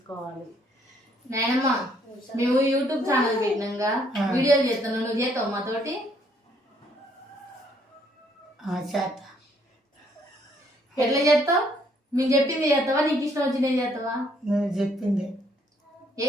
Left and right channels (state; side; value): normal; both; correlation 0.67